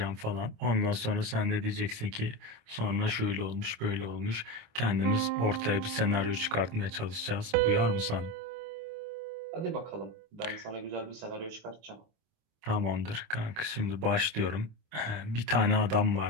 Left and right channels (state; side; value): late; left; 26 ms